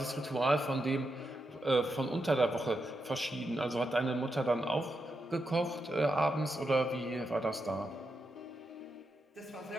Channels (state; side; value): normal; both; correlation 0.85